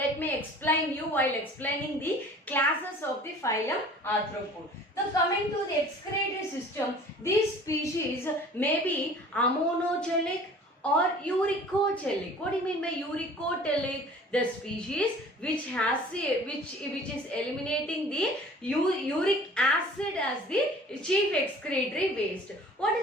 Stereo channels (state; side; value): normal; both; correlation 0.47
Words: me explain you while explaining the classes of the phylum Arthropod. So coming to the excretory system, these species may be ammonogelic or uricogelic. What do you mean by uricogelic? The species which is eliminating the uric acid as the chief excretory waste. What